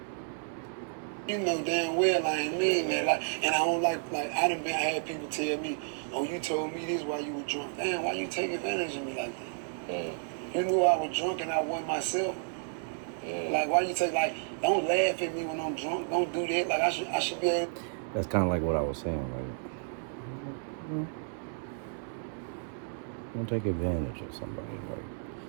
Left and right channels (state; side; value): silent; left; 57 dB below the other